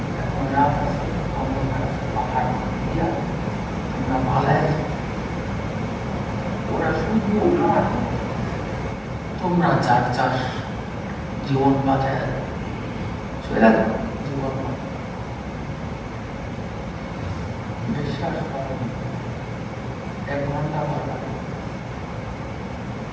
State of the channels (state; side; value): identical; both; correlation 1.00